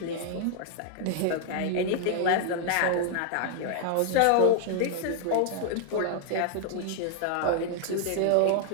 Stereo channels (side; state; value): both; different; correlation -0.01